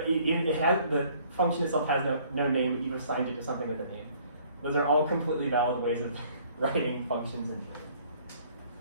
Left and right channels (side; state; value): both; inverted; correlation -0.58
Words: the function itself has no name, but you've assigned it to something with a name. Those are all completely valid ways of writing functions in